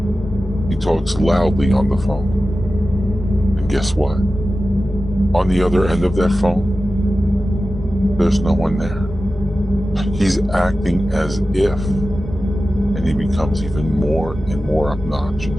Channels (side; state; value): both; normal; correlation 0.94